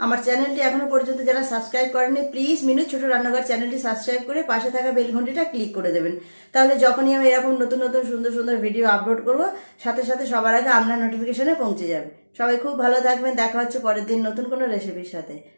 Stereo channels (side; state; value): both; inverted; correlation -1.00